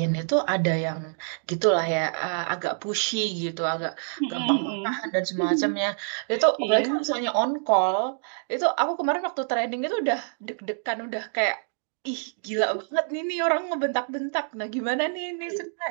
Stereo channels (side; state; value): left; silent; digital silence